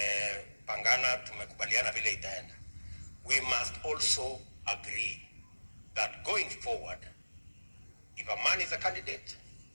tumekubaliana vile itaenda, we must also agree that going forward, if a man is a candidate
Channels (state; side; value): inverted; both; correlation -1.00